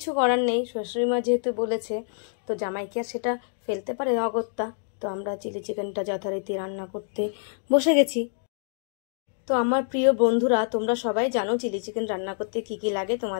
করার নেই, শাশুড়ি মা যেহেতু বলেছে তো জামাইকে আর সেটা ফেলতে পারে অগত্যা। তো আমরা চিলি চিকেনটা যথারীতি রান্না করতে বসে গেছি। তো আমার প্রিয় বন্ধুরা, তোমরা সবাই জানো চিলি চিকেন রান্না করতে কি কি লাগে,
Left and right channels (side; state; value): right; silent; digital silence